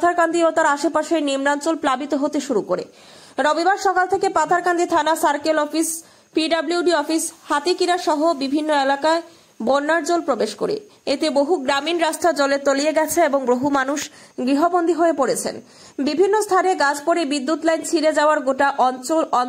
ও তার আশেপাশের নিম্নাঞ্চল প্লাবিত হতে শুরু করে। রবিবার সকাল থেকে পাথারকান্দি থানা, সার্কেল অফিস, পিডব্লিউডি অফিস, হাতিকিরা সহ বিভিন্ন এলাকায় বন্যার জল প্রবেশ করে। এতে বহু গ্রামীণ রাস্তা জলে তলিয়ে গেছে এবং বহু মানুষ গৃহবন্দী হয়ে পড়েছেন। বিভিন্ন স্থানে গাছ পড়ে বিদ্যুৎ লাইন ছিঁড়ে যাওয়ার গোটা অঞ্চল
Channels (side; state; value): both; identical; correlation 1.00